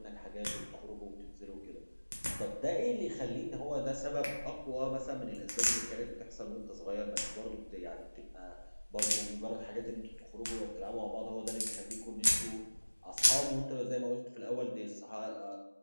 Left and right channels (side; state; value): both; inverted; correlation -1.00